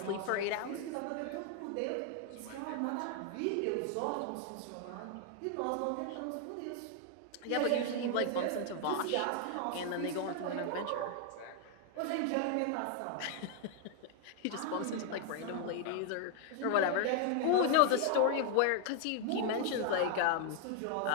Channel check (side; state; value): both; different; correlation 0.00